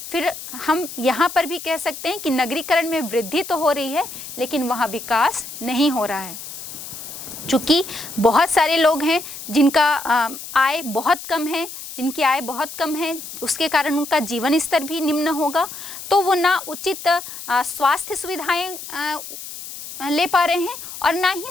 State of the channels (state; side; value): noise; left; hiss, 11 dB below the sound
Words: फिर हम यहाँ पर भी कह सकते हैं कि नगरीकरण में वृद्धि तो हो रही है, लेकिन वहाँ विकास नहीं हो रहा है। चूँकि बहुत सारे लोग हैं जिनका आय बहुत कम है, जिनकी आय बहुत कम है, उसके कारण उनका जीवन स्तर भी निम्न होगा, तो वो ना उचित स्वास्थ्य सुविधाएं ले पा रहे हैं और ना